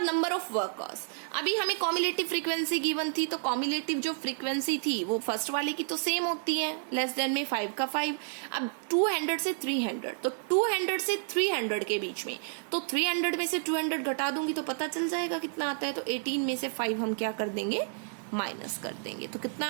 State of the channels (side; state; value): left; silent; digital silence